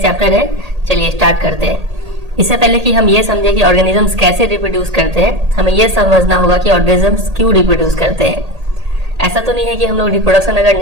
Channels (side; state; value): left; late; 1.8 ms